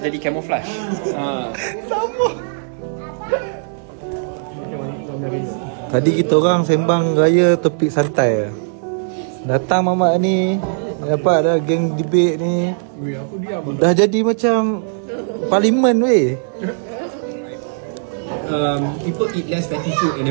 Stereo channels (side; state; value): left; silent; digital silence